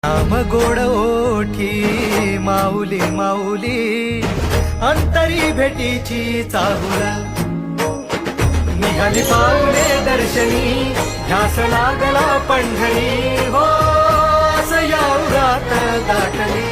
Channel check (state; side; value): identical; both; correlation 1.00